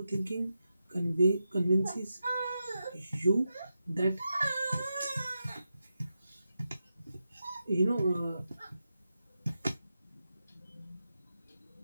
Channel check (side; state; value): both; inverted; correlation -0.88